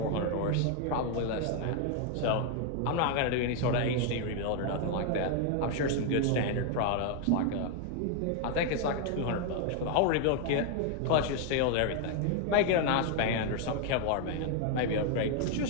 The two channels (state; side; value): different; both; correlation 0.00